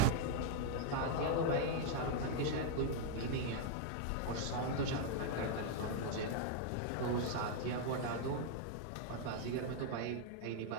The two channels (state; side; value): different; both; correlation 0.00